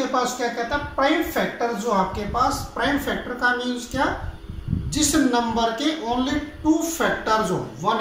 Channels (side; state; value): both; identical; correlation 1.00